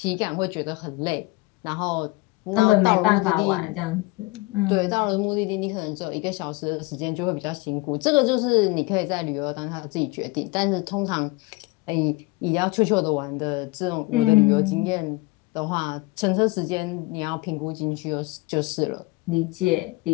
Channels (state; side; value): quieter; right; 23.1 dB